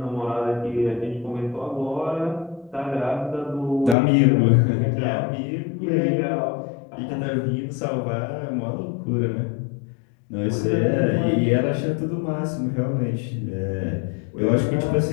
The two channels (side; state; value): right; drops out; at 4.0 s